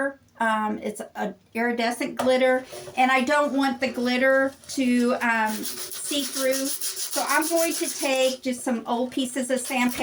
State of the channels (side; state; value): both; identical; correlation 1.00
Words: It's a iridescent glitter, and I don't want the glitter to see through. So I'm going to take just some old pieces of